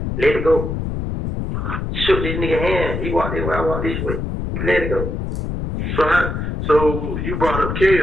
Let it go. Shook this nigga hand. He walked that way, I walked this way. We let it go. So you brought up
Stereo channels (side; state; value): left; noise; rumble, 3 dB below the sound